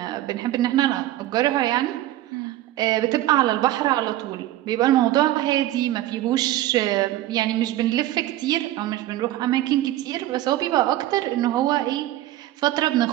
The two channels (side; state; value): left; quieter; 14.8 dB